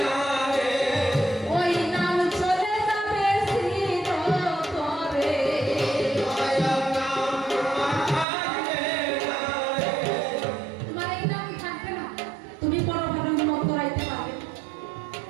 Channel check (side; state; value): left; drops out; at 8.2 s